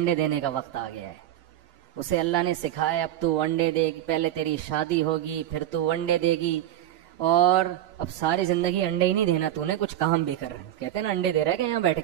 دینے کا وقت آ گیا ہے. اسے اللہ نے سکھایا اب تو انڈے دے گی، پہلے تیری شادی ہوگی پھر تو انڈے دے گی، اور اب ساری زندگی انڈے ہی نہیں دینا، تو نے کچھ کام بھی کر. کہتے ہیں نا انڈے دے رہا ہے کہ یہاں بیٹھ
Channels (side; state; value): left; quieter; 12.3 dB